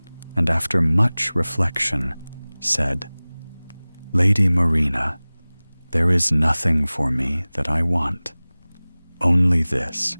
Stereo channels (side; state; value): both; inverted; correlation -1.00